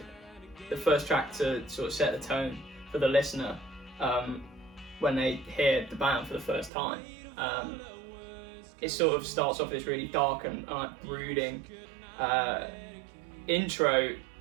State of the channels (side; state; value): left; drops out; at 6.7 s